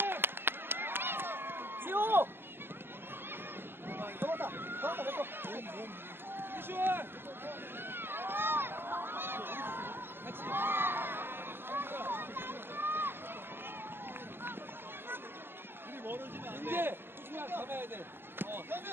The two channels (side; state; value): left; late; 0.11 ms